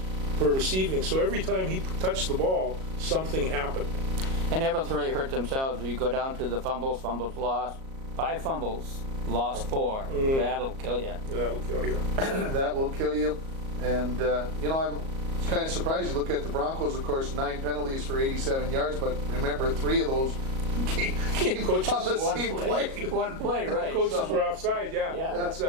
per receiving. So every time he touched the ball, something happened. And Eveleth really hurt themselves. You go down to the fumbles lost. 5 fumbles, lost 4. That'll kill you. That'll kill you. That will kill you. And, you know, I'm kind of surprised. You look at the Broncos, of course, 9 penalties for 87 yards, but remember, 3 of those came Coaches, on the same play. One play, right. Coaches were offside, yeah. Yeah. That's,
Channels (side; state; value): left; late; 37 ms